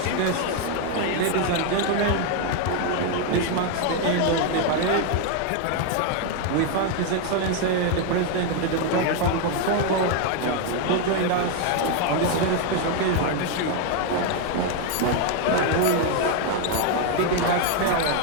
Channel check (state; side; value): different; both; correlation 0.01